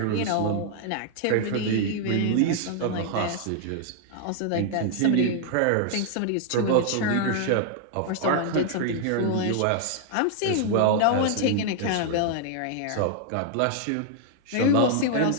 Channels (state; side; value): different; both; correlation -0.01